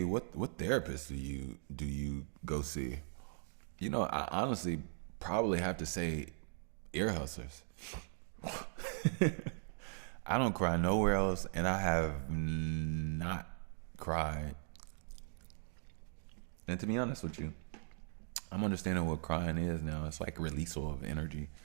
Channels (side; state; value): left; silent; digital silence